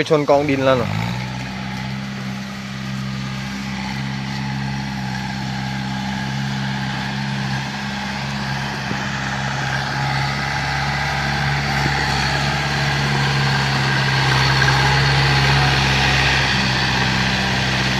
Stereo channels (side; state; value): both; identical; correlation 1.00